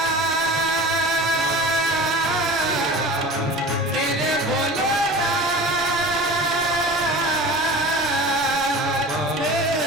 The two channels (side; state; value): both; normal; correlation 0.37